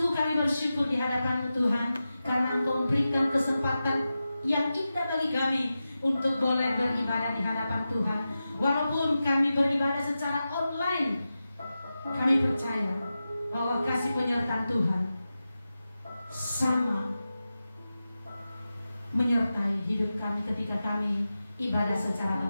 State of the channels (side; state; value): both; inverted; correlation -0.93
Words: kami bersyukur di hadapan-Mu Tuhan, karena Engkau memberikan kesempatan yang indah bagi kami untuk boleh beribadah di hadapan Tuhan. Walaupun kami beribadah secara online, kami percaya bahwa kasih penyertaan Tuhan sama menyertai hidup kami ketika kami ibadah secara